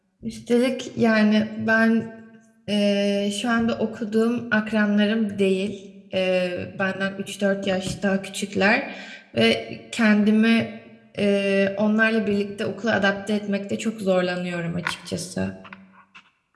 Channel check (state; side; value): identical; both; correlation 1.00